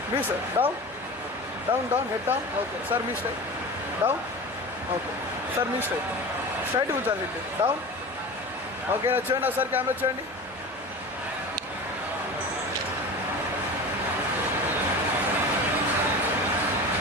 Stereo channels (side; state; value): both; normal; correlation 0.33